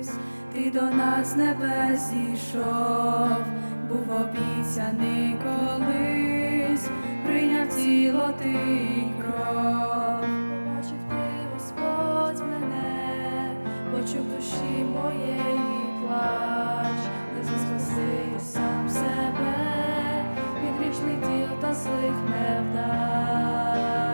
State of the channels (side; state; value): both; inverted; correlation -1.00